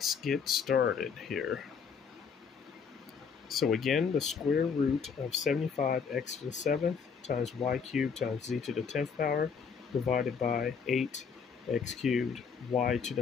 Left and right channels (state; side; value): quieter; right; 6.2 dB